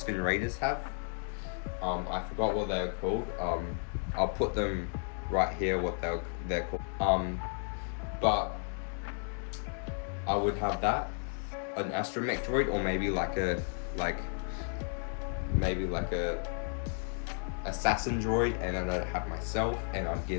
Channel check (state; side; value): silent; right; 56 dB below the other